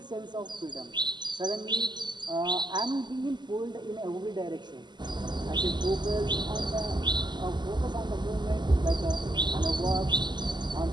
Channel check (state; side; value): late; left; 0.21 ms